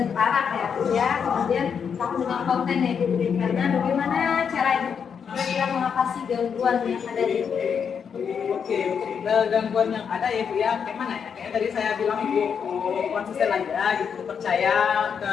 terarah ya. Kemudian kamu dengan konten yang diberikan. Nah bagaimana cara kira-kira mengatasi gangguan yang ada di Oke, gangguan yang ada ya Bu ya, kayak mana ya? Kayak tadi saya bilang Bu, konsisten aja gitu, percaya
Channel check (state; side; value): quieter; right; 6.9 dB